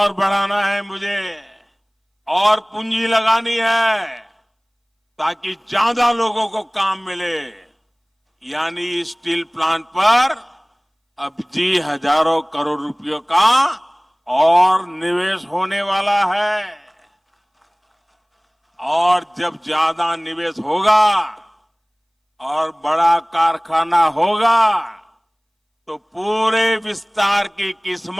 बढ़ाना है, मुझे और पूंजी लगानी है ताकि ज्यादा लोगों को काम मिले। यानी स्टील प्लांट पर अब जी हजारों करोड़ रुपयों का और निवेश होने वाला है। और जब ज्यादा निवेश होगा और बड़ा कारखाना होगा तो पूरे विस्तार की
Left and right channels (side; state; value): both; identical; correlation 1.00